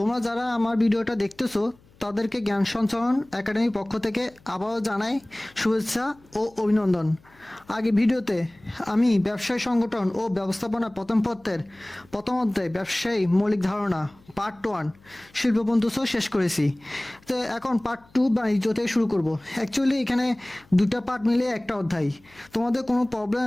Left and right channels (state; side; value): noise; left; hum, 29 dB below the sound